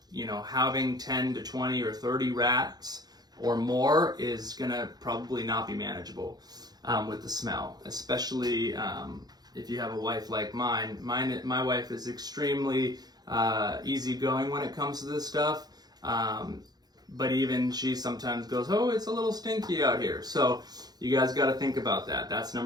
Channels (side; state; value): left; late; 0.19 ms